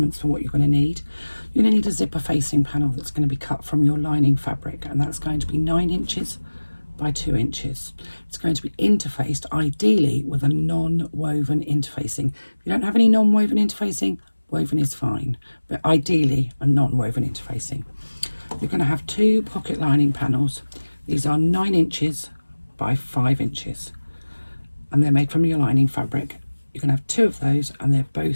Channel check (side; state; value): both; inverted; correlation -1.00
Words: for what you're going to need. You're going to need a zipper facing panel that's going to be cut from your lining fabric, and that's going to be 9 inches by 2 inches. It's going to be interfaced ideally with a non-woven interfacing. If you don't have any non-woven interfacing, woven is fine, but ideally a non-woven interfacing. You're going to have 2 pocket lining panels. These are 9 inches by 5 inches, and they're made from your lining fabric. You're going to have 2 of those, and they